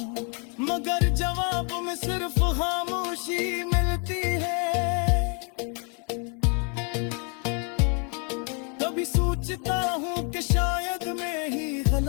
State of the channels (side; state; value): right; quieter; 37.7 dB